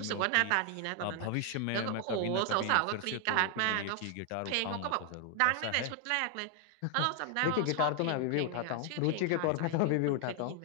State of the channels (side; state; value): both; different; correlation 0.00